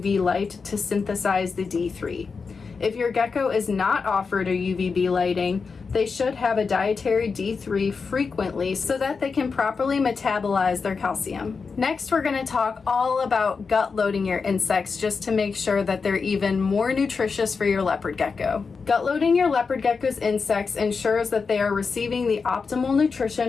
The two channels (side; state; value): right; quieter; 5.0 dB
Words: light to synthesize the D3. If your gecko is not offered a UVB lighting, they should have a dietary D3 frequently so that they can properly metabolize their calcium. Next, we're going to talk all about gut loading your insects just to make sure that they're even more nutritious for your leopard gecko. Gut loading your leopard gecko's insects ensures that they are receiving the optimal